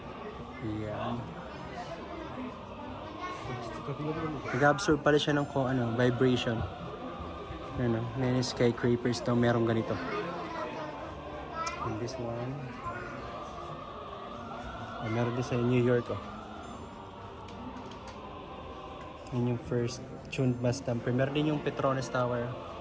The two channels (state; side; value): identical; both; correlation 1.00